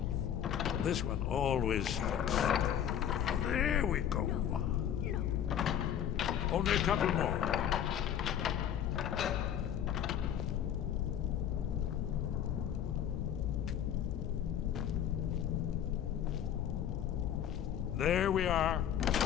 knife. This one always sticks. There we go. No. Only a couple more. There we are.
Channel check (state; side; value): quieter; right; 9.7 dB